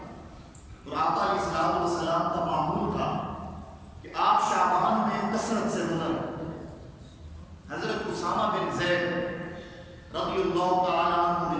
اور آقا علیہ الصلوۃ والسلام کا معمول تھا کہ آپ شعبان میں کثرت سے روزہ رکھتے۔ حضرت اسامہ بن زید رضی اللہ تعالیٰ عنہ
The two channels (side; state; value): both; identical; correlation 1.00